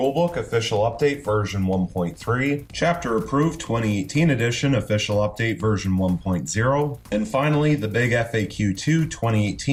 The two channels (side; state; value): both; identical; correlation 1.00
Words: Official Update version 1.3, Chapter Approved 2018 edition Official Update version 1.0, and finally the Big FAQ 2